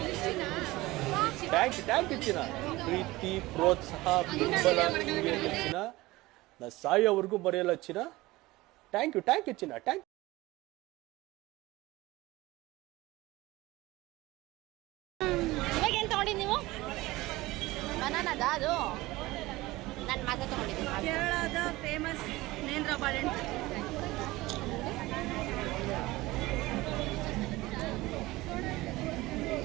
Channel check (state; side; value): quieter; left; 19.5 dB